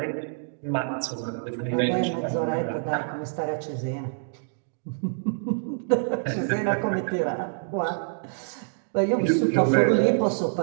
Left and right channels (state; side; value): silent; left; digital silence